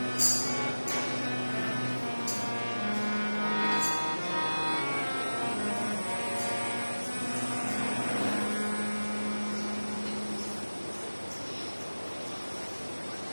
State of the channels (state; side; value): inverted; both; correlation -1.00